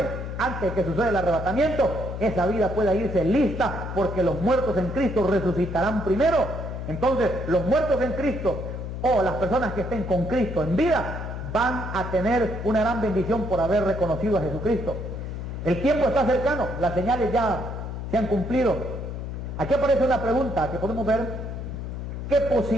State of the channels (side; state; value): left; noise; hum, 6 dB below the sound